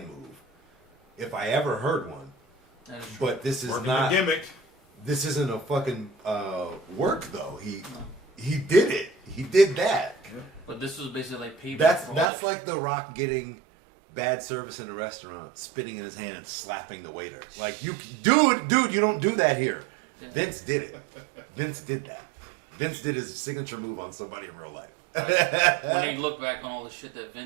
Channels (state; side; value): drops out; left; at 12.3 s